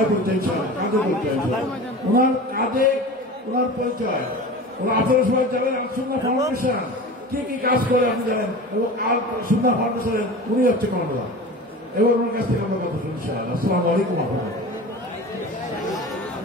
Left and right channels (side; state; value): both; normal; correlation 0.34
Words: বলতে ইনশাআল্লাহ, কাজে বলতে ওনার কাজে, ওনার পরিচয়, ওরা আপনারা সবাই জানেন আল-সুন্নাহ ফাউন্ডেশন কি কি কাজ করে আপনি জানেন, এবং আল-সুন্নাহ ফাউন্ডেশনের উনি হচ্ছে কর্মকর্তা। এবার ওনার কাছ থেকে আমরা কথা শুনি ইনশাআল্লাহ। আসসালামু আলাইকুম।